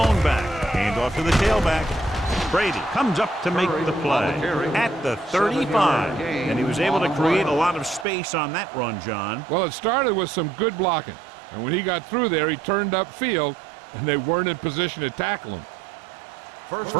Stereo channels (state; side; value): drops out; left; at 8.1 s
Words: back. Hand off to the tailback. Brady comes up to make the play at the 35. And he was able to create a lot of space on that run, John. Well, it started with some good blocking. And when he got through there, he turned upfield and they weren't in position to tackle him.